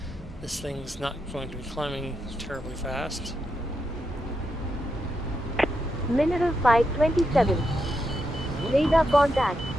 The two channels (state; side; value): normal; both; correlation 0.84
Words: this thing's not going to be climbing terribly fast. Mineral 527. Radar contact.